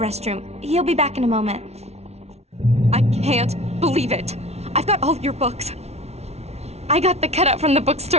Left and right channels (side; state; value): left; late; 0.31 ms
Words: He'll be back in a moment. I can't believe it. I've got all your books. I got the cutout from the